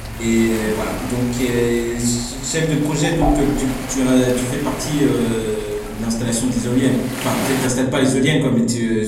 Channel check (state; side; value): identical; both; correlation 1.00